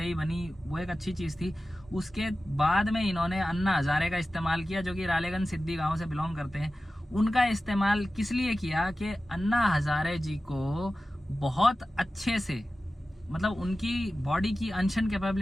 बनी, वो एक अच्छी चीज़ थी। उसके बाद में इन्होंने अन्ना हजारे का इस्तेमाल किया, जो कि रालेगंज सिद्धि गांव से बिलोंग करते हैं। उनका इस्तेमाल किस लिए किया कि अन्ना हजारे जी को बहुत अच्छे से, मतलब उनकी बॉडी की अनशन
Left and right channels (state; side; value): normal; both; correlation 0.95